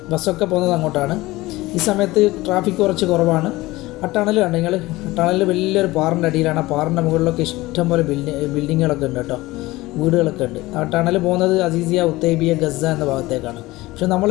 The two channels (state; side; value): quieter; right; 19.4 dB